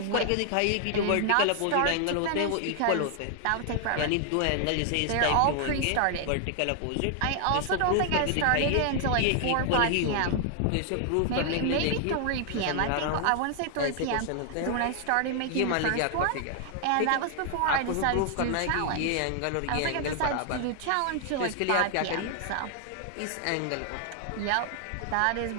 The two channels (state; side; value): different; both; correlation 0.00